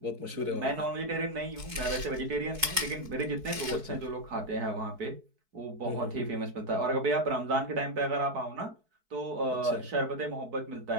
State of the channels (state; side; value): late; left; 4.6 ms